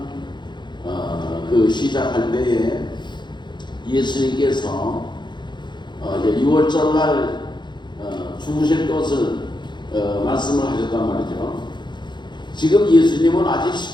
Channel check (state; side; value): late; right; 0.22 ms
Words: 그 시작할 때에 예수님께서 이제 6월절 날 죽으실 것을 말씀을 하셨단 말이죠. 지금 예수님은 아직